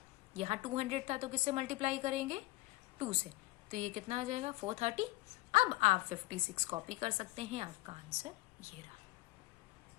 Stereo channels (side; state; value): right; quieter; 19.5 dB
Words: यहाँ 200 था तो किससे मल्टीप्लाई करेंगे? 2 से। तो ये कितना आ जाएगा? 430। अब आप 56 कॉपी कर सकते हैं, आपका आंसर ये रहा।